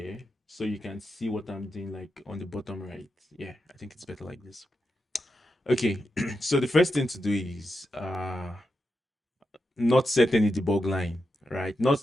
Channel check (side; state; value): both; normal; correlation 0.87